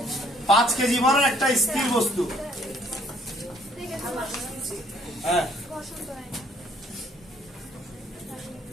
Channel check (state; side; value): normal; both; correlation 0.63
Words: 5 কেজি ভরের একটা স্থির বস্তু। হ্যাঁ,